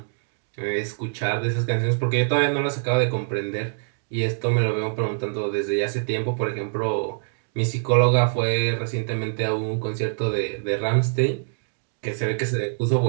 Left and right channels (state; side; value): silent; left; 62 dB below the other